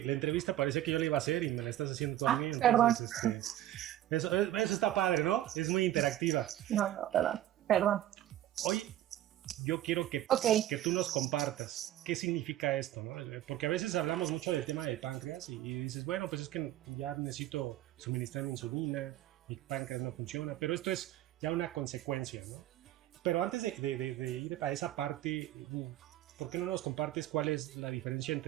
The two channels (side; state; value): left; quieter; 13.3 dB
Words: la entrevista parece que yo la iba a hacer y me la estás haciendo tú a mí. Entonces, eso está padre, ¿no? Es muy interactiva. No, perdón. Hoy yo quiero que tú nos compartas qué significa esto, ¿no? Porque a veces hablamos mucho del tema del páncreas y dices, bueno, pues es que ya necesito suministrar insulina, mi páncreas no funciona, pero esto es ya una consecuencia, ¿no? Pero antes de ir a esa parte, ¿por qué no nos compartes cuál es la diferencia